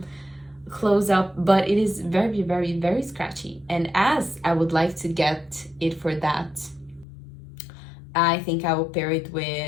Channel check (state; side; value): drops out; right; at 7.1 s